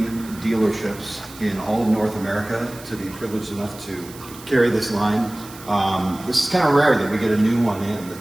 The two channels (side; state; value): right; noise; hiss, 18 dB below the sound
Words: dealerships in all of North America to be privileged enough to carry this line. This is kind of rare that we get a new one in